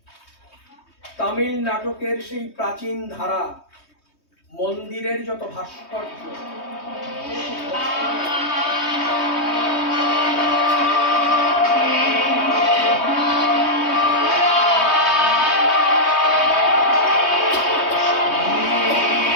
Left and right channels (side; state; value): right; late; 3.2 ms